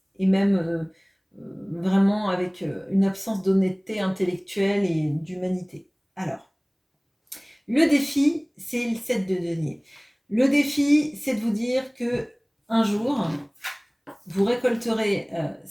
même vraiment avec une absence d'honnêteté intellectuelle et d'humanité. Alors, le défi, c'est le 7 de denier. Le défi, c'est de vous dire que un jour, vous récolterez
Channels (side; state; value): both; identical; correlation 1.00